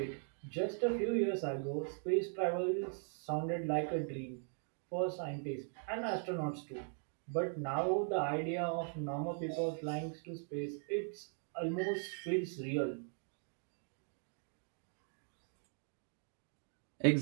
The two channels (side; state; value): left; silent; 51 dB below the other